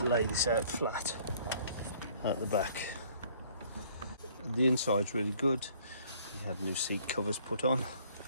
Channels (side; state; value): both; inverted; correlation -0.59